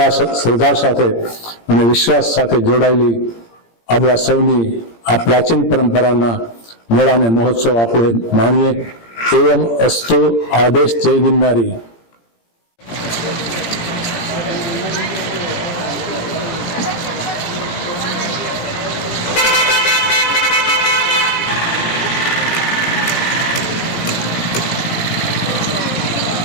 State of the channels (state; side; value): late; right; 17 ms